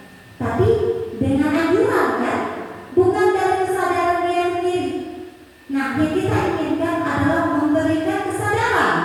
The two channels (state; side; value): identical; both; correlation 1.00